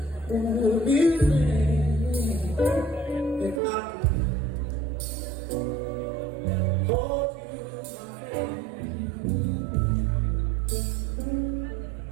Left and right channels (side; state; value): left; drops out; at 3.6 s